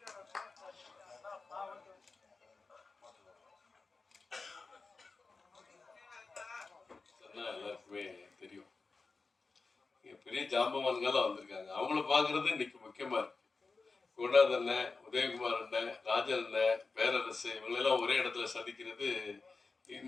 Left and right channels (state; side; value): quieter; right; 4.1 dB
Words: எல்லாருக்குமே தெரியும், பெரிய ஜாம்பவான்கள்லாம் வந்திருக்காங்க. அவங்கள பார்க்கறது இன்னைக்கு முக்கியமா இருக்கு. குணாத் அண்ணன், உதயகுமார் அண்ணன், ராஜன் அண்ணன், பேரரசு இவங்களெல்லாம் ஒரே இடத்துல சந்திக்கிறது